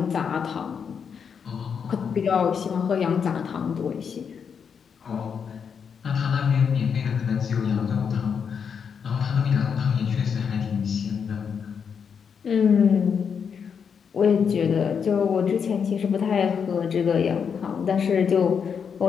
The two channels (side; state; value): right; quieter; 6.8 dB